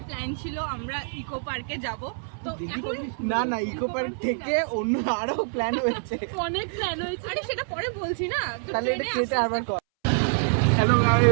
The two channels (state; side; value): silent; left; 61 dB below the other